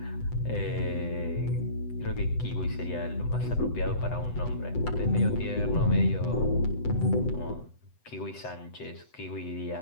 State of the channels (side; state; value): right; late; 8.0 ms